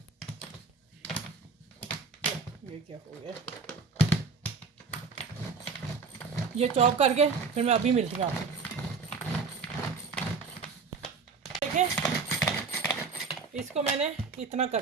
ये क्या हो गया, ये चॉप करके फिर मैं अभी मिलती हूँ आपको। देखें इसको मैंने इतना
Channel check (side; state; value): left; quieter; 4.9 dB